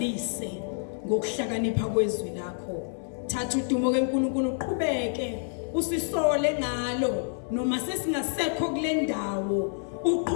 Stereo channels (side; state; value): right; silent; 59 dB below the other